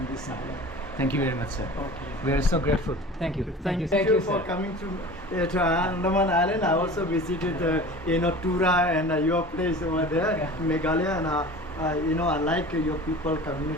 this island. Thank you very much, sir. Okay. We are so grateful. Thank you. Thank you for sir. coming to Andaman Island. I also visited Tura and your place over there, Meghalaya, and I like your people,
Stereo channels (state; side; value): normal; both; correlation 0.39